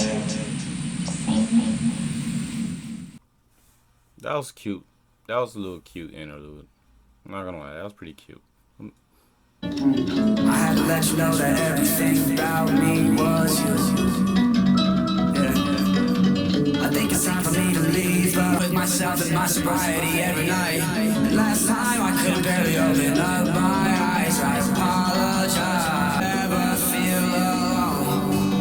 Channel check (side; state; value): both; identical; correlation 1.00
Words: That was cute. That was a little cute interlude. I'm not gonna lie, that was pretty cute. I had to let you know that everything about me was you. Yeah. I think it's time for me to leave with myself and my sobriety every night. Last time I couldn't barely open up my eyes. I apologize. Never feel